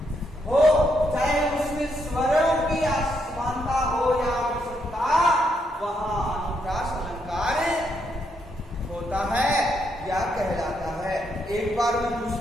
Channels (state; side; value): normal; both; correlation 0.77